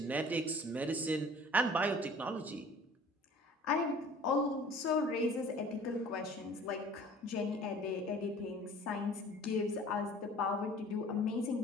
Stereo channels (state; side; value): normal; both; correlation 0.48